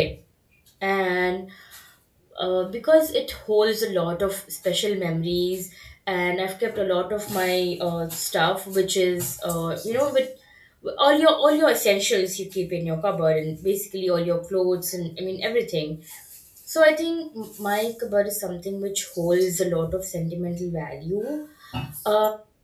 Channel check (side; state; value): both; identical; correlation 1.00